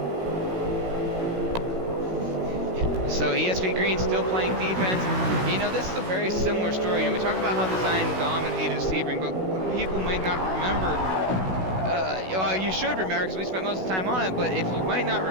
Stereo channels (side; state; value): left; late; 16 ms